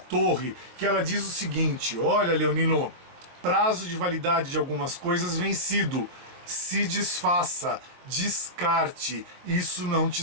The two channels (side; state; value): left; late; 23 ms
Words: que ela diz o seguinte: olha, leonino, prazo de validade de algumas coisas vencido, se desfaça, descarte, isso não